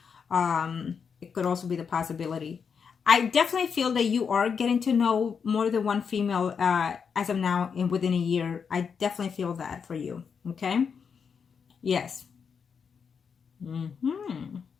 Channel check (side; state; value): right; quieter; 6.4 dB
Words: It could also be the possibility. I definitely feel that you are getting to know more than one female as of now and within a year. I definitely feel that for you. Okay? Yes.